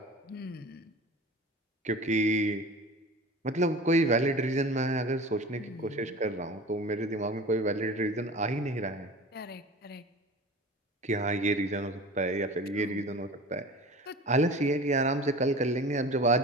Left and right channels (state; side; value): normal; both; correlation 0.37